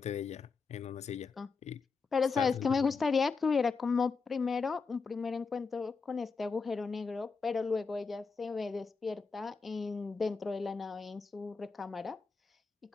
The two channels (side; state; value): right; quieter; 4.8 dB